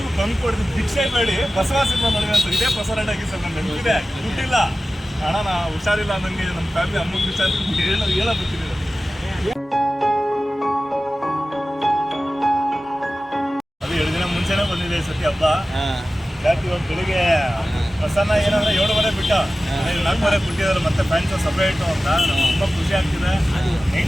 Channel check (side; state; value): both; normal; correlation 0.95